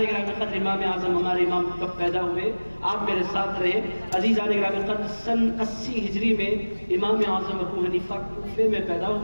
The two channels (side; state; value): both; inverted; correlation -1.00